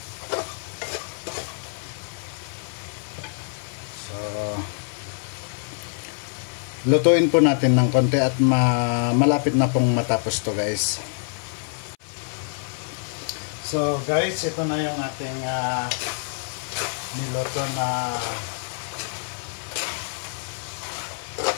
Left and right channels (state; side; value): silent; right; 58 dB below the other